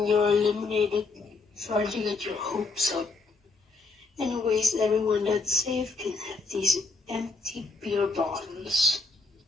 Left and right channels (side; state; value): right; quieter; 3.8 dB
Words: you're eliminated. Sorry to get your hopes up. Anyways, everyone that's safe can have these empty beer bottles.